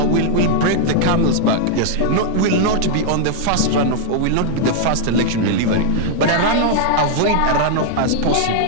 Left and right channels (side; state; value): both; different; correlation 0.00